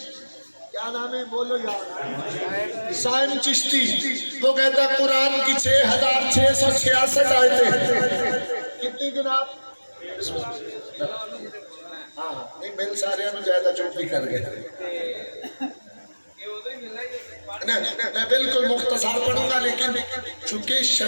کیا نام ہے بولو یار؟ سائم چشتی۔ وہ کہتا ہے قرآن کی 6666 آیتیں کتنی جناب؟ ہاں نہیں مل سارے ہم زیادہ چوپ بھی کر گئے۔ میں بالکل مختصر پڑھوں گا، لیکن چونکہ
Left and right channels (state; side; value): inverted; both; correlation -1.00